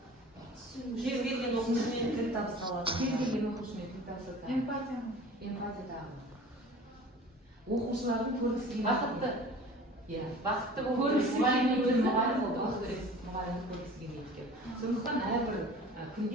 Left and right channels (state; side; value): normal; both; correlation 0.42